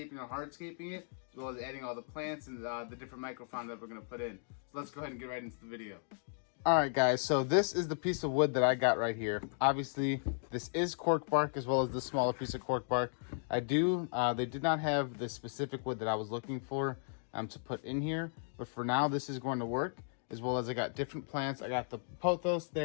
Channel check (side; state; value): right; silent; digital silence